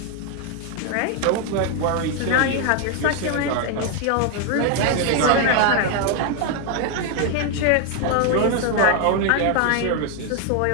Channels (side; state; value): both; different; correlation 0.01